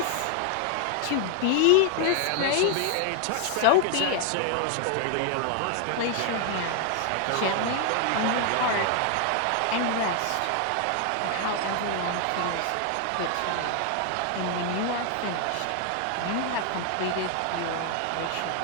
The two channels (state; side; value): different; both; correlation 0.00